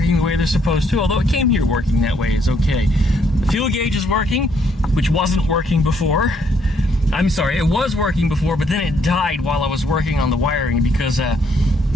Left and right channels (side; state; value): both; normal; correlation 0.70